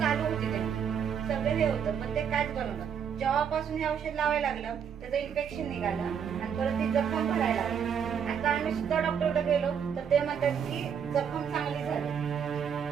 चालू होते त्यांची सगळं हे होतं पण ते काहीच बनवलं. जेव्हापासून हे औषध लावायला लागलं त्याचं इन्फेक्शन निघालं आणि परत ती जखम भरायला लागली. आता आम्ही सुद्धा डॉक्टरकडे गेलो तर ते म्हणतात की जखम चांगली झाली,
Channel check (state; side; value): quieter; left; 7.7 dB